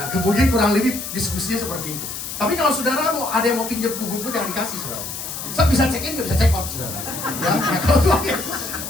kemudian kurang lebih diskusinya seperti itu. Tapi kalau saudara mau ada yang mau pinjam kuburmu, jangan dikasih, saudara. Saya bisa check in, nggak bisa check out, saudara. Ya, nah, kalau Tuhan Yesus,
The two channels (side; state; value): left; noise; hiss, 7 dB below the sound